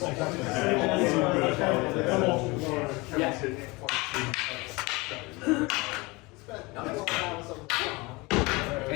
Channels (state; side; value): quieter; right; 24.5 dB